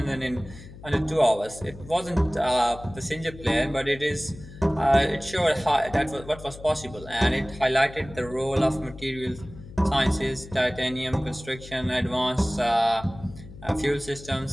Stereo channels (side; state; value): left; noise; hum, 16 dB below the sound